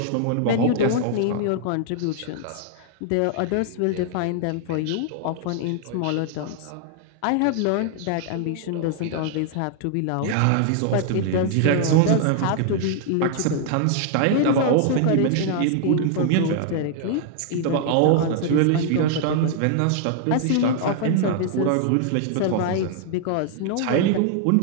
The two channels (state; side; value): different; both; correlation 0.00